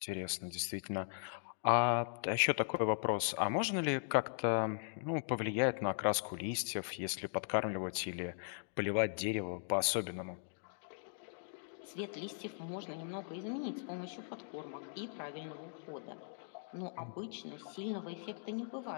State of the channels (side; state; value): right; silent; digital silence